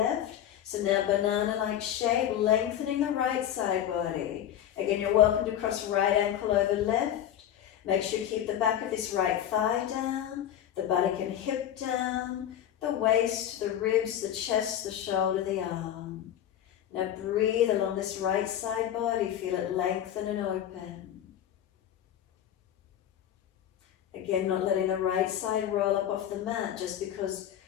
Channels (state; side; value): quieter; right; 10.7 dB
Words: So now banana-like shape, lengthening the right side body. Again, you're welcome to cross right ankle over left. Make sure you keep the back of this right thigh down, the buttock and hip down, the waist, the ribs, the chest, the shoulder, the arm. Now breathe along this right side body, feel it lengthen and open. Again, not letting the right side roll up off the mat just because